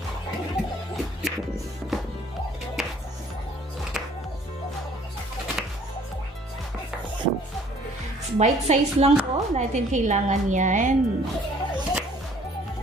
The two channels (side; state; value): both; normal; correlation 0.57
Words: Bite size lang po natin kailangan yan.